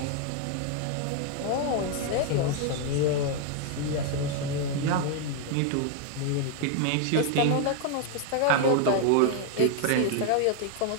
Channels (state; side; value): different; both; correlation 0.00